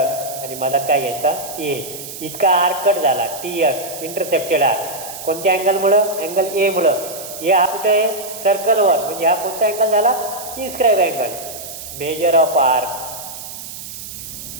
आणि मला काय घ्यायचा? ए. इतका आर्क कट झाला TS इंटरसेप्टेड आर्क. कोणत्या अँगलमुळं? अँगल ए मुळं. ए हा कुठे आहे? सर्कलवर. म्हणजे हा कोणता अँगल झाला? Inscribe angle. Measure of arc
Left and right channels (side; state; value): right; noise; hiss, 11 dB below the sound